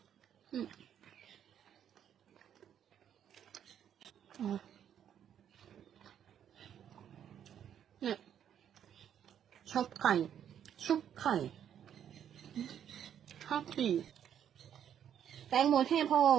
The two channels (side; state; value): left; quieter; 9.4 dB